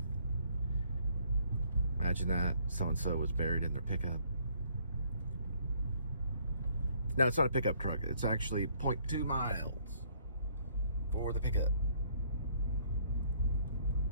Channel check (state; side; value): inverted; both; correlation -0.63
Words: Imagine that. So-and-so was buried in their pickup. No, it's not a pickup truck. It's actually 0.2 miles for the pickup